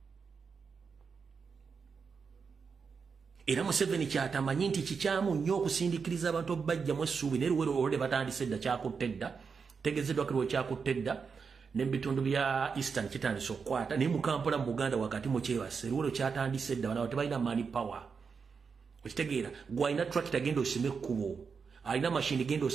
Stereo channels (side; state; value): left; quieter; 5.6 dB